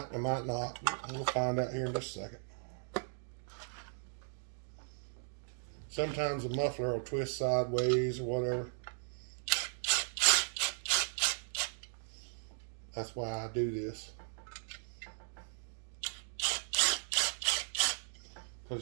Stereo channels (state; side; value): silent; left; digital silence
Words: not. We'll find out here in just a second. Sometimes the muffler will twist sideways or whatever. That's why I do this.